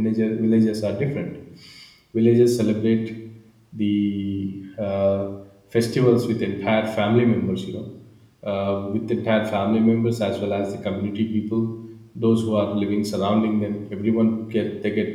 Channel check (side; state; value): both; identical; correlation 1.00